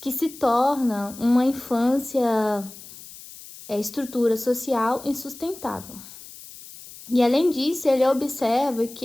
se torna uma infância, estrutura social insustentável. E além disso, ele observa que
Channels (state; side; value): noise; left; hiss, 17 dB below the sound